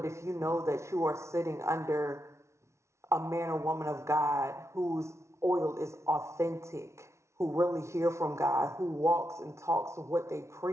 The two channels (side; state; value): left; late; 0.13 ms